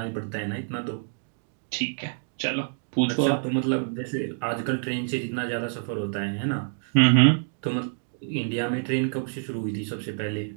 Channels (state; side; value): silent; left; digital silence